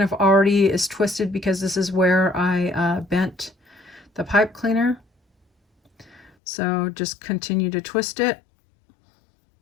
of already is twisted because this is where I bent the pipe cleaner. So just continue to twist it.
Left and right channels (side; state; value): right; drops out; at 6.3 s